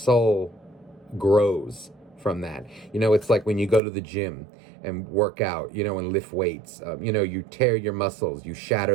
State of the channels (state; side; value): drops out; left; at 3.8 s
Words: grows from that. You know, it's like when you go to the gym and work out, you know, and lift weights. You know, you tear your muscles, you